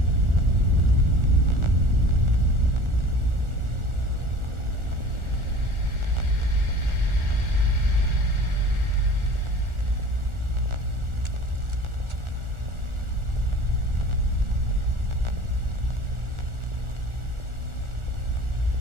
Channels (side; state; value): left; late; 1.4 ms